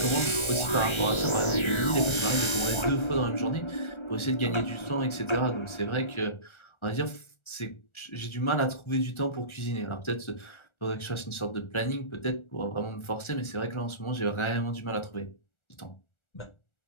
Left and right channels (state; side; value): late; right; 1.4 ms